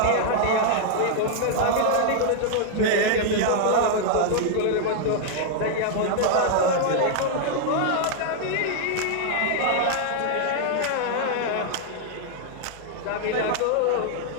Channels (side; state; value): both; different; correlation -0.01